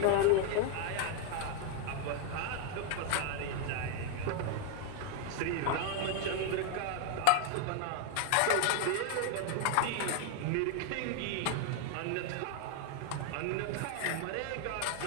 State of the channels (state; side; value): different; both; correlation 0.00